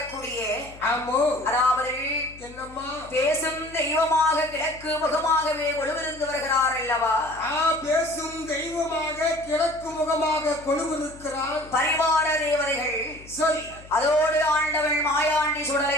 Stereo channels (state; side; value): noise; left; hum, 20 dB below the sound